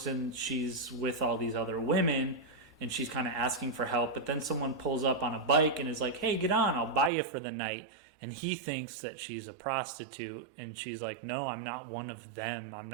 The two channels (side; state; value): left; drops out; at 7.1 s